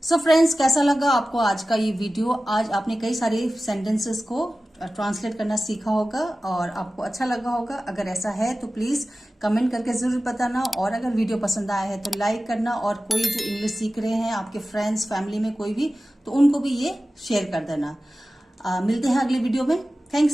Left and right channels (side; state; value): both; normal; correlation 0.95